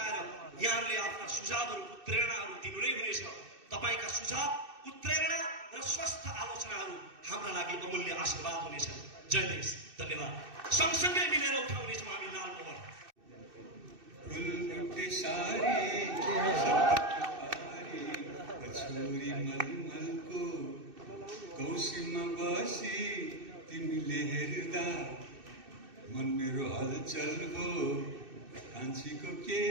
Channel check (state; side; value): late; left; 2.6 ms